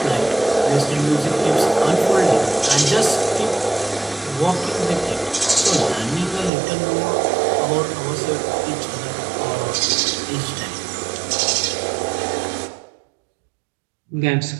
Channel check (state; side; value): drops out; left; at 6.5 s